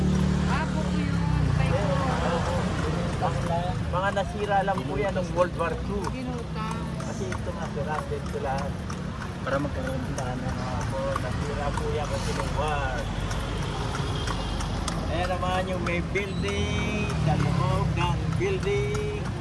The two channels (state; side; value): identical; both; correlation 1.00